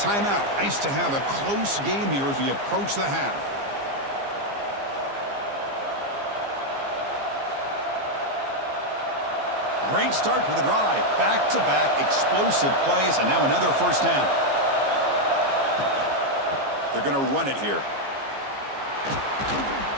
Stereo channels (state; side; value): late; left; 15 ms